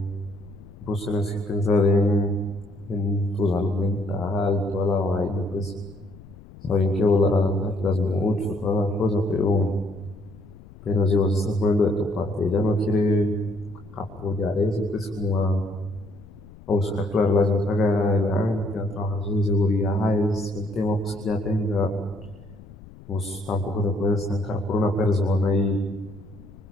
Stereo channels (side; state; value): left; noise; rumble, 20 dB below the sound